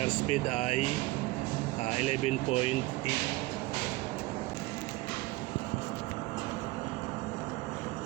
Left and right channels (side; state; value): left; quieter; 20.2 dB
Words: speed ay 11.8.